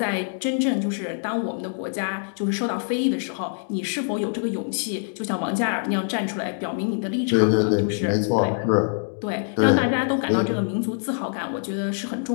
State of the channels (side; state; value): right; silent; digital silence